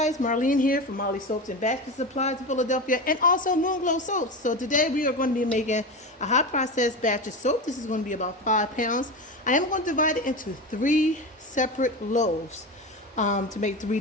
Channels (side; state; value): both; normal; correlation 0.23